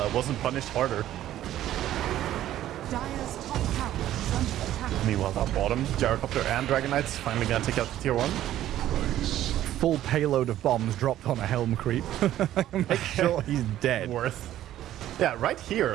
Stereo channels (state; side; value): quieter; left; 12.9 dB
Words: wasn't punished harder. Dire's top tower is under attack. Meanwhile, that bottom, Gyrocopter and Dragonites finally gonna take out the tier 1. Full payload of bombs dropped on a Helm creep. Make sure he's dead. Worth. Yeah, right